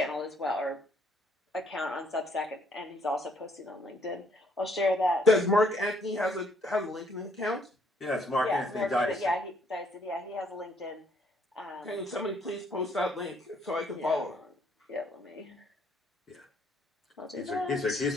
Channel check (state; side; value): normal; both; correlation 0.66